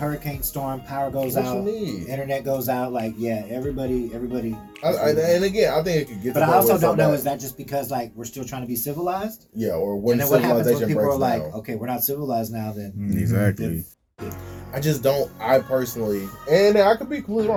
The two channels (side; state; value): both; identical; correlation 1.00